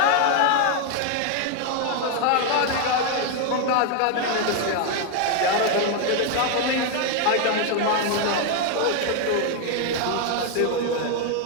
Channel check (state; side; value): different; both; correlation 0.01